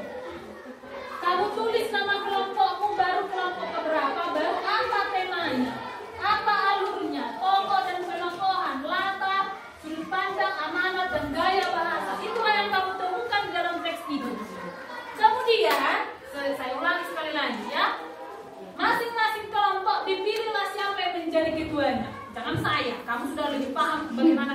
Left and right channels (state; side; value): identical; both; correlation 1.00